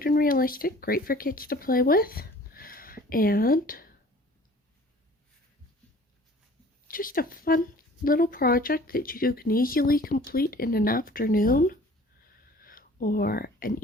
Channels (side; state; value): both; normal; correlation 0.49